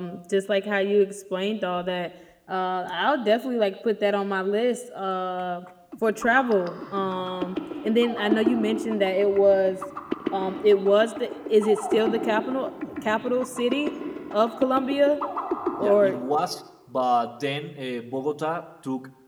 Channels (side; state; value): both; identical; correlation 1.00